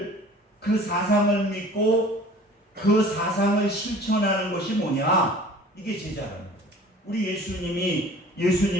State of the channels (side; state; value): both; normal; correlation 0.46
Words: 그 사상을 믿고 그 사상을 실천하는 것이 뭐냐? 이게 제자라는 거예요. 우리